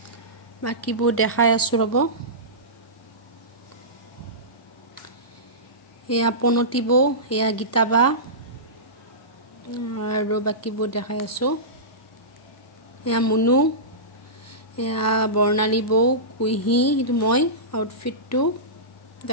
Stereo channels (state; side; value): normal; both; correlation -0.19